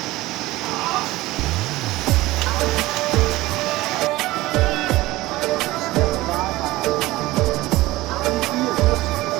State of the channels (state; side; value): quieter; left; 18.4 dB